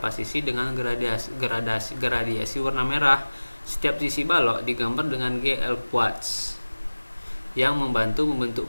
sisi dengan gradiasi warna merah. Setiap sisi balok digambar dengan GL quartz yang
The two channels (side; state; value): both; inverted; correlation -1.00